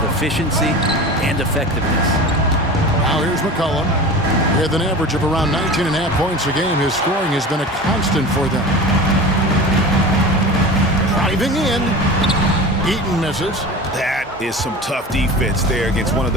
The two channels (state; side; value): normal; both; correlation 0.34